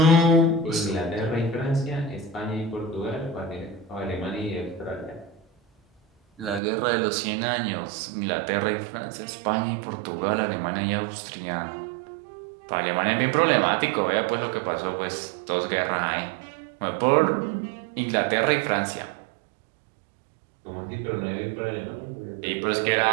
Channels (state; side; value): drops out; left; at 6.6 s